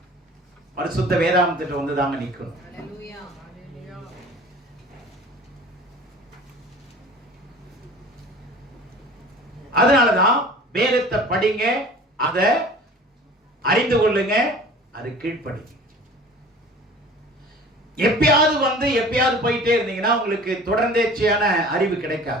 பரிசுத்த வேதாகமத்திட்ட வந்து தாங்க நிக்கணும். அதனாலதான் வேதத்தை படிங்க, அதை அறிந்து கொள்ளுங்க, அது கீழ்ப்படிங்க. எப்பயாவது வந்து எப்பயாவது போயிட்டே இருந்தீங்கன்னா உங்களுக்கு தொடர்ந்தேர்ச்சியான அறிவு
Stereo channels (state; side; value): normal; both; correlation 0.44